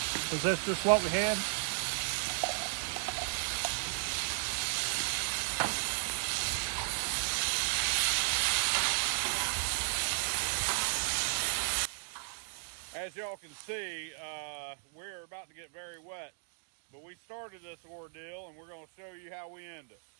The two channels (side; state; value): left; silent; digital silence